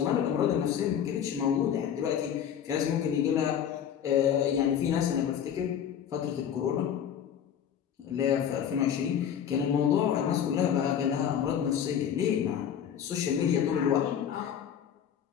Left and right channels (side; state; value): right; quieter; 8.9 dB